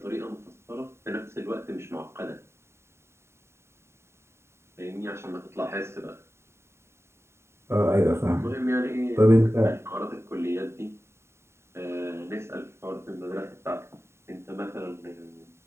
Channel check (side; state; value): left; late; 0.13 ms